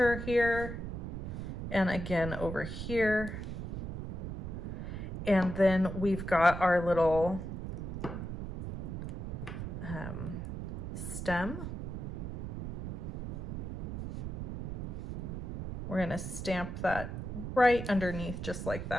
here. And again over here. And then we've got our little stem. We're gonna stamp that right underneath just like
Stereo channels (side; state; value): right; noise; rumble, 5 dB below the sound